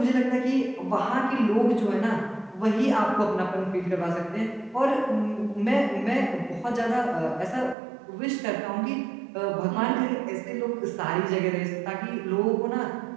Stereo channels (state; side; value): drops out; left; at 7.8 s